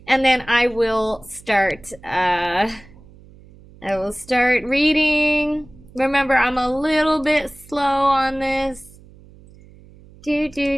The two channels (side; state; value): right; noise; hum, 23 dB below the sound